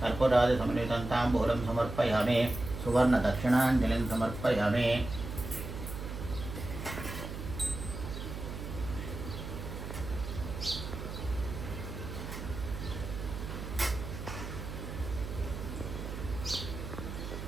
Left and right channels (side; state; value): right; noise; hum, 7 dB below the sound